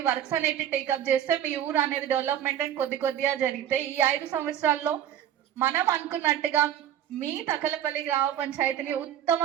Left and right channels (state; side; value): quieter; left; 10.5 dB